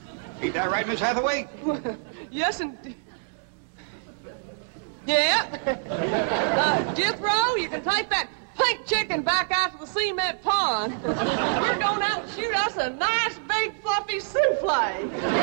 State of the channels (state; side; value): silent; left; digital silence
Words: Ain't that right, Miss Hathaway? Yes, indeed. Yeah. Jethro, you can take that pink chicken back out to the cement pond. We're going out and shoot us a nice, big, fluffy souffle.